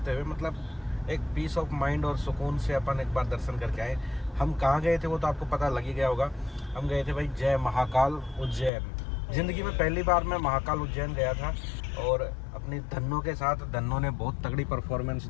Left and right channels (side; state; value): right; drops out; at 8.7 s